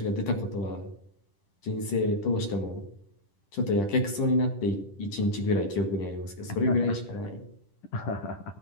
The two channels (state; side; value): late; right; 10 ms